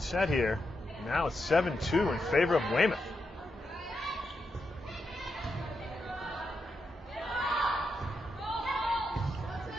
set here. Now it's 7-2 in favor of Weymouth.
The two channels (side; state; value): both; normal; correlation 0.85